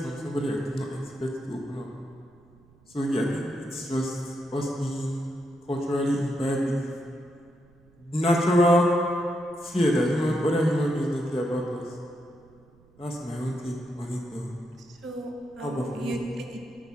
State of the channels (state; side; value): noise; right; rumble, 29 dB below the sound